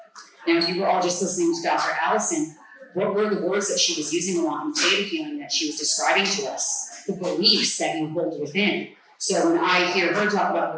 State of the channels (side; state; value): both; identical; correlation 1.00